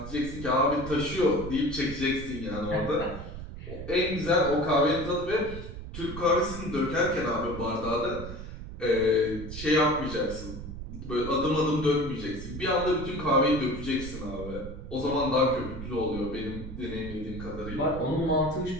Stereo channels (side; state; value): right; noise; rumble, 10 dB below the sound